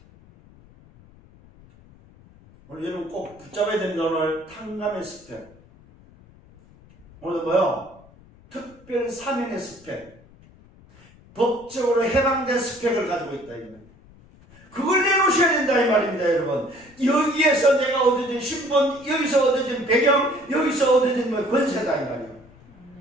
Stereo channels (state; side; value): noise; left; rumble, 25 dB below the sound